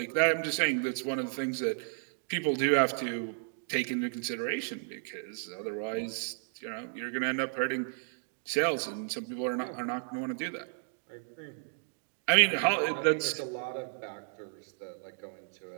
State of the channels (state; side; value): silent; left; digital silence